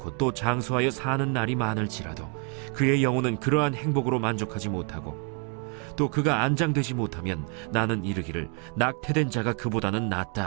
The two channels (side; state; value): left; quieter; 38.3 dB